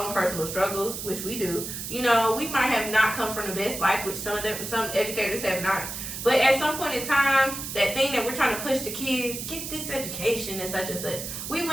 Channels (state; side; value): noise; right; hiss, 7 dB below the sound